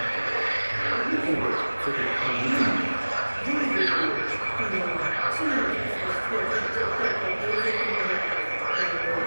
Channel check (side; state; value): both; inverted; correlation -1.00